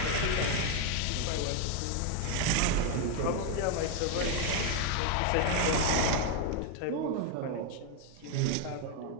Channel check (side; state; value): both; different; correlation 0.01